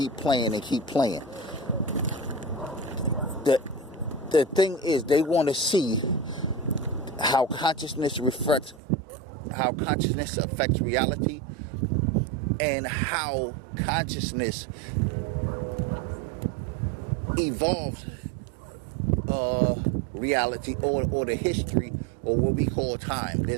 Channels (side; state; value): left; drops out; at 8.8 s